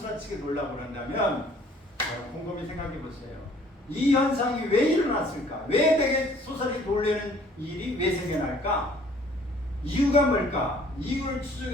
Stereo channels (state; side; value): normal; both; correlation 0.57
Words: 놀라고 그런다면 곰곰이 생각해 보세요. 이 현상이 왜 일어났을까? 왜 내게 소설이 놀라는 일이 왜 생겨날까? 이유가 뭘까? 이유를